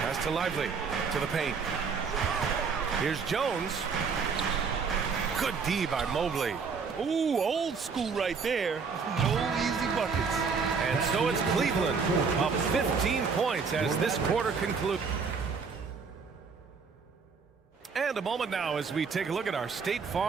to Lively, to the paint. Here's Jones. Good D by Mobley. Ooh, old school right there. No easy buckets. And so it's Cleveland up 15 points as this quarter concludes. And a moment now as we take a look at our State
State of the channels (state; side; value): quieter; left; 5.4 dB